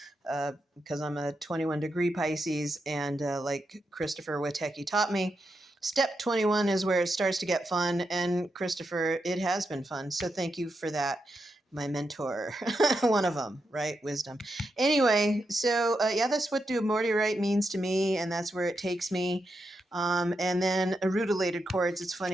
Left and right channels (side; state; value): both; normal; correlation 0.85